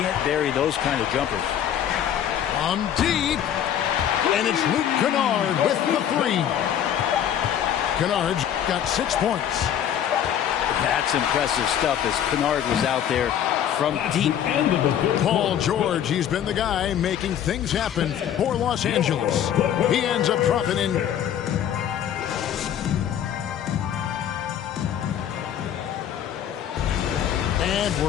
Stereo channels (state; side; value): quieter; right; 9.8 dB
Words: bury those kind of jumpers. On deep. And it's Luke Kennard with the three. Kennard's got 6 points. That's impressive stuff as Kennard was out there from deep. Paul George, he's been the guy making things happen for Los Angeles. He ends up dropping in. And